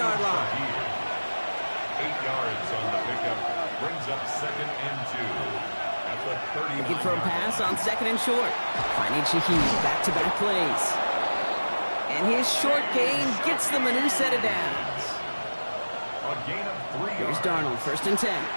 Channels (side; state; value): both; inverted; correlation -1.00